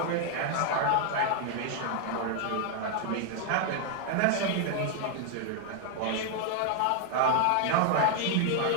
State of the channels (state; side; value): different; both; correlation 0.00